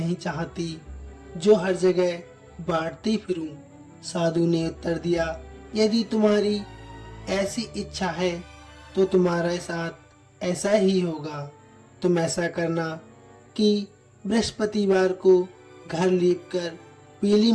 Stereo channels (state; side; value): identical; both; correlation 1.00